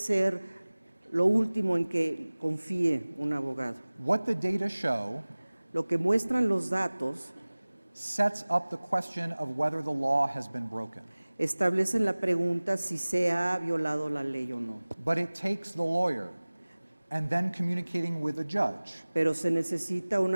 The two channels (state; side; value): inverted; both; correlation -1.00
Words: lo último en que confíe un abogado. What the data show Lo que muestran los datos sets up the question of whether the law has been broken. establecen la pregunta si se ha violado la ley o no. But it takes the lawyer and then communicating with the judge Pero se necesita un